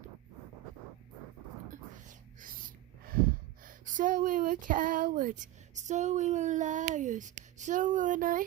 So we were cowards, so we were liars, so we were not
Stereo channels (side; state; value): left; quieter; 15.6 dB